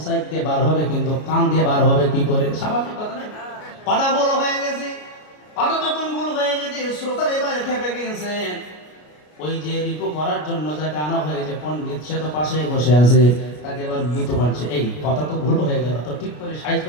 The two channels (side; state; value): right; late; 33 ms